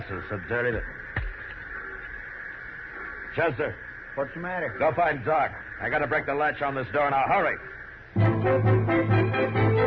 is so dirty that... Chester. What's the matter? Go find Doc. I gotta break the latch on this door now. Hurry.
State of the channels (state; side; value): identical; both; correlation 1.00